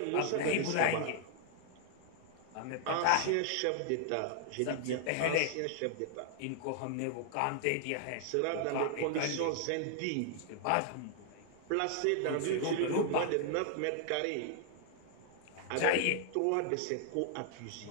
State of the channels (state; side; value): different; both; correlation 0.00